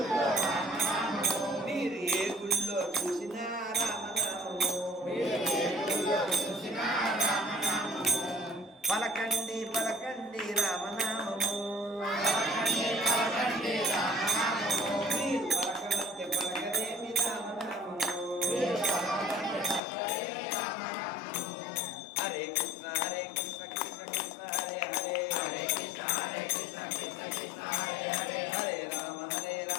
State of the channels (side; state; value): right; drops out; at 19.8 s